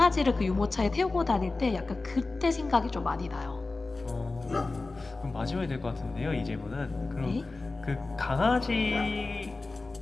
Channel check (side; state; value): right; quieter; 3.5 dB